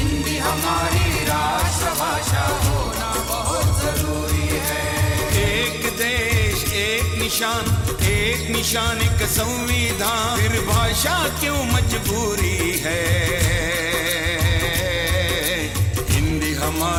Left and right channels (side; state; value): both; identical; correlation 1.00